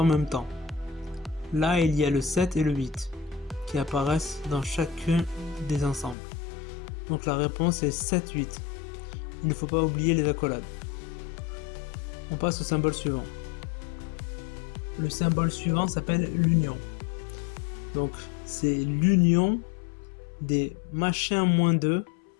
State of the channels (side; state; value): right; drops out; at 6.2 s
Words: même temps. Là, il y a le 7 et le 8 qui apparaissent dans chacun des ensembles. Donc la réponse est 7, 8. Il ne faut pas oublier les accolades. On passe au symbole suivant. Le symbole suivant s'appelle l'union. Donc c'est l'union des machin moins 2,